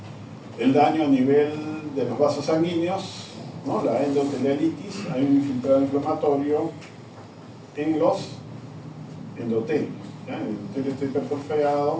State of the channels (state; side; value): identical; both; correlation 1.00